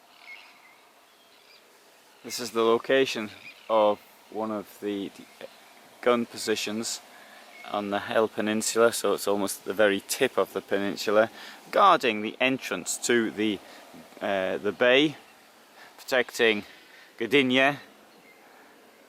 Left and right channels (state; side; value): identical; both; correlation 1.00